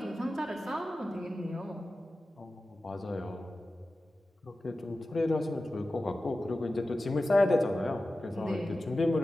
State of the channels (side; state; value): both; normal; correlation 0.95